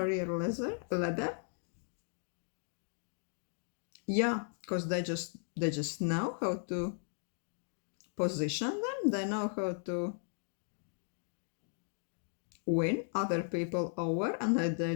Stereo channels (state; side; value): silent; right; 53 dB below the other